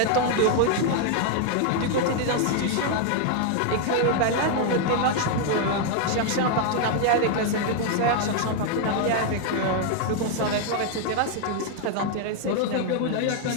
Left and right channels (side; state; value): both; different; correlation 0.00